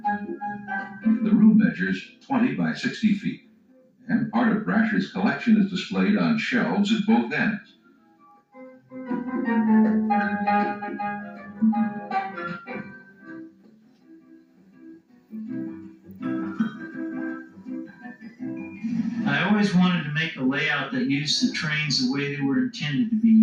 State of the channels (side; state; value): both; identical; correlation 1.00